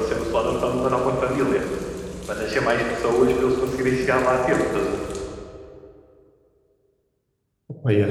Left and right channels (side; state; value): both; identical; correlation 1.00